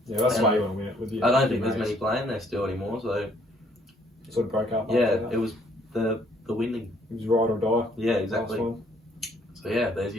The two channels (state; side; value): normal; both; correlation 0.64